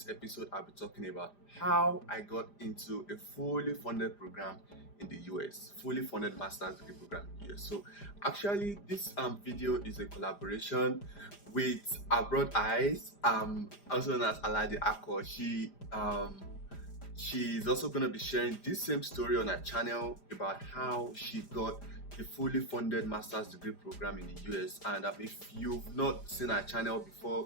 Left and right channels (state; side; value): late; right; 5.0 ms